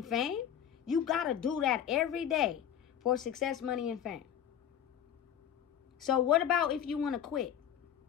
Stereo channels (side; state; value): right; quieter; 9.7 dB